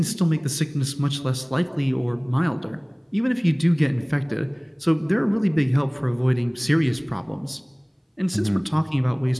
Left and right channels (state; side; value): identical; both; correlation 1.00